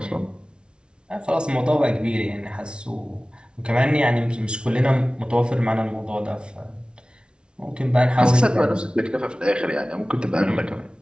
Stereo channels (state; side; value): late; left; 0.056 ms